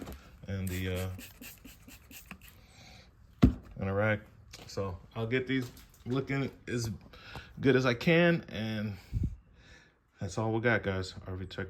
and the rack. So I'll get these looking as good as I can, and that's all we got, guys. RV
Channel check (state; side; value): identical; both; correlation 1.00